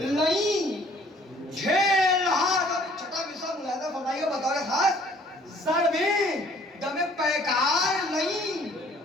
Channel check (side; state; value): both; normal; correlation 0.57